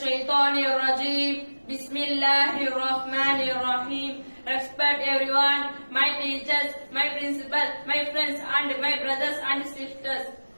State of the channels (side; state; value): both; inverted; correlation -1.00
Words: الرجيم بسم الله الرحمن الرحيم. Respect everyone, my teachers, my principal, my friends and my brothers and sisters.